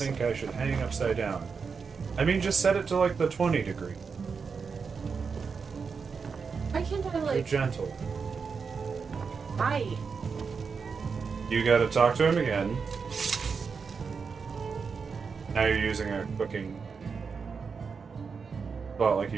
I should hang upside down. I mean, just set it to like the 20 degree. Why can't I You're like... gentle. Why? You gotta talk to him again. Now you're using a cooking... Well, like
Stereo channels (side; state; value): left; quieter; 5.5 dB